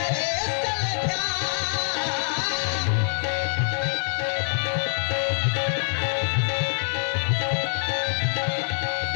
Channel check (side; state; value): right; silent; digital silence